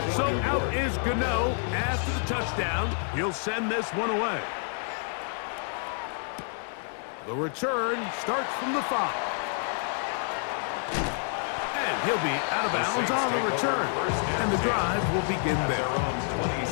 So out is Gano after the touchdown. He'll send this one away. The return starts from the 5. And he'll be out of bounds on the return. And the drive will begin there. On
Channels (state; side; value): silent; right; 59 dB below the other